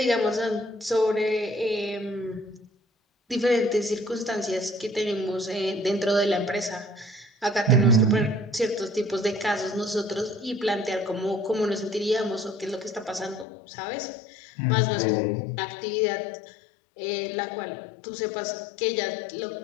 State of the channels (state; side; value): drops out; right; at 13.5 s